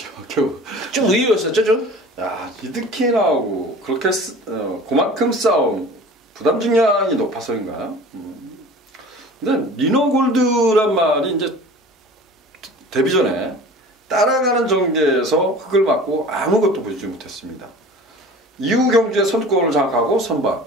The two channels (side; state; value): both; normal; correlation 0.42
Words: 겨우. 좀 의외였었죠 좀? 야, 리드킨하고 그렇게 그만큼 싸움, 부담 중량이 높아서인가? 근데 리너골드란 말이 이제 데뷔 전에 따라가는 전개에서 흙을 맞고 아무것도 보여주지 못했습니다. 이후 경주에 선두권을 장악하고 선방,